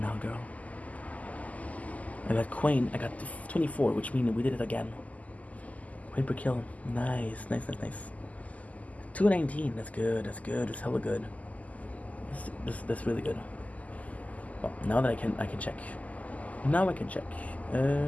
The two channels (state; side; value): late; right; 0.074 ms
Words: now, girl. I got Queen. I got 24, which means we did it again. Queen per kill. Nice. 219. That's good. That's hella good. That's really good. Well, now that I can check. Now I can check.